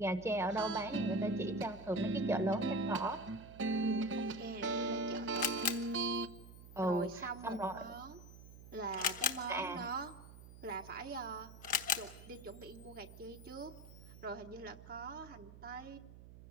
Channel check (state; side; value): noise; right; hum, 16 dB below the sound